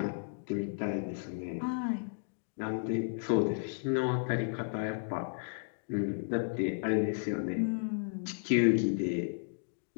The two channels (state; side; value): silent; right; digital silence